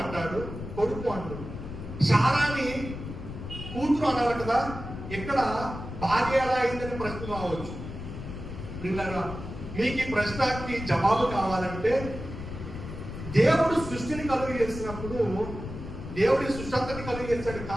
అంటాడు, కొడుకు అంటాడు. శారాని కూతురు అన్నారు కదా, ఇక్కడ భార్య ఎలా అయిందని ప్రశ్న రావచ్చు. మీకు ఈ ప్రశ్నకి జవాబు కావాలంటే, దేవుడు సృష్టిని కలుగు చేసినప్పుడు దేవుడి సృష్టి అంతని కలుగు చేశాడు,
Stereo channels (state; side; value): noise; left; rumble, 9 dB below the sound